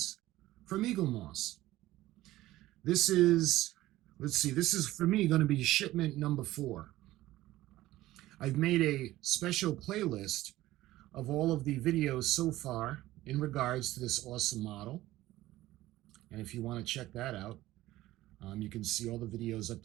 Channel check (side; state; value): left; quieter; 16.1 dB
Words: from Eagle Moss. This is for me going to be shipment number 4. I've made a special playlist of all of the videos so far in regards to this awesome model. And if you want to check that out, you can see all the videos up